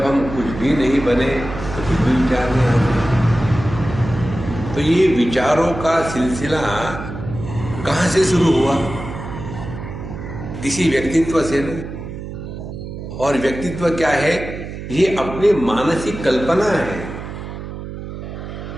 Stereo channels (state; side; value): noise; right; hum, 9 dB below the sound